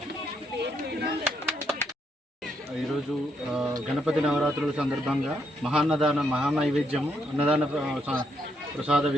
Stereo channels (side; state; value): both; normal; correlation 0.77